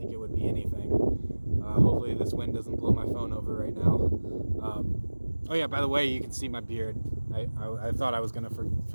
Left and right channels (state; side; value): inverted; both; correlation -1.00